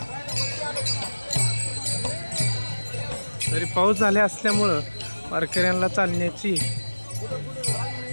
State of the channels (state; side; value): inverted; both; correlation -1.00